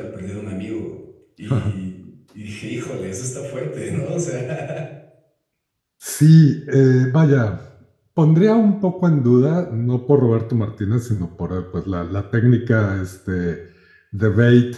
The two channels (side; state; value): both; identical; correlation 1.00